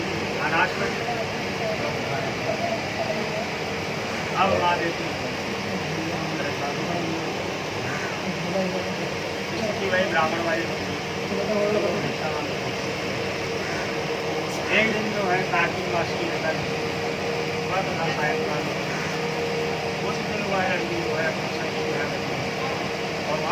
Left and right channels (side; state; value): both; identical; correlation 1.00